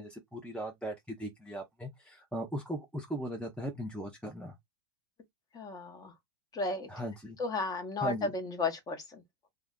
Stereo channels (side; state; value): both; normal; correlation 0.38